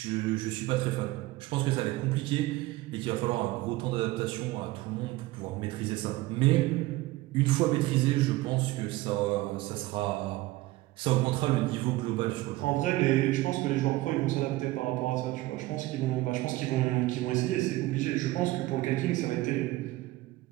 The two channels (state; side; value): quieter; left; 18.5 dB